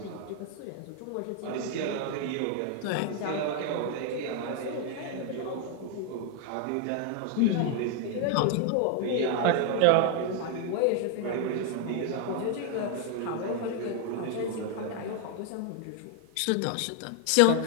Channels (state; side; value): different; both; correlation 0.00